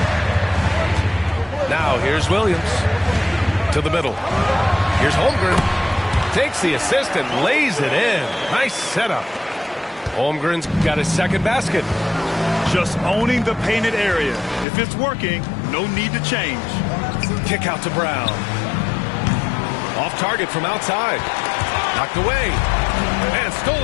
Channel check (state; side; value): drops out; right; at 14.7 s